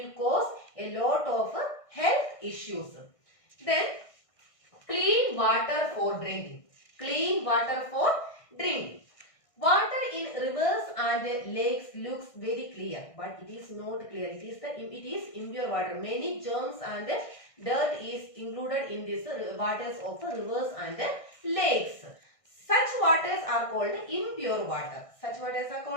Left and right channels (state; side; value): late; right; 1.6 ms